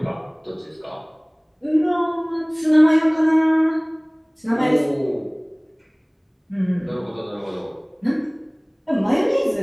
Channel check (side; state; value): both; identical; correlation 1.00